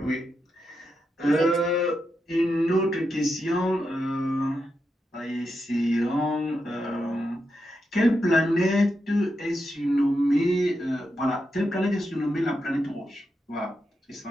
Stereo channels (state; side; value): normal; both; correlation 0.86